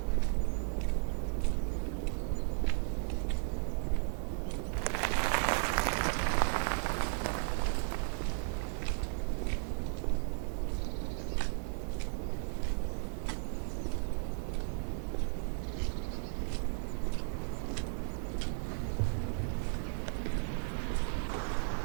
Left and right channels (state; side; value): silent; left; digital silence